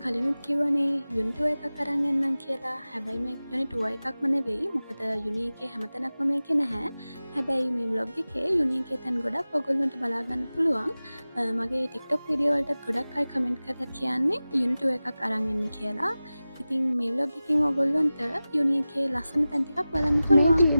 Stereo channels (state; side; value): inverted; both; correlation -0.96